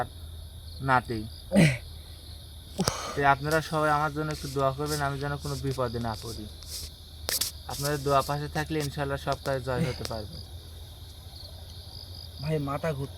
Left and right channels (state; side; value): identical; both; correlation 1.00